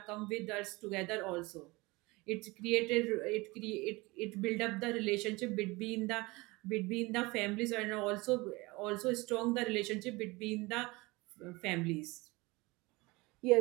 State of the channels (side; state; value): left; quieter; 23.3 dB